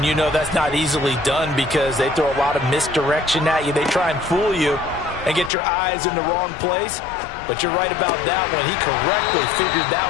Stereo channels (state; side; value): drops out; right; at 5.5 s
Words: you know that's not easily done because they throw a lot of misdirection at you. They try and fool you and get your eyes in the wrong place. But you're right about that one. He correctly figured that